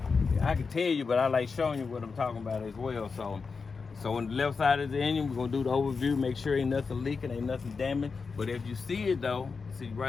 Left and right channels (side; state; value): right; quieter; 4.9 dB